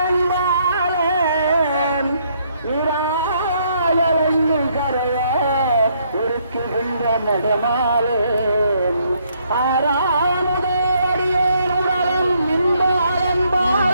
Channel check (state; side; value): inverted; both; correlation -0.71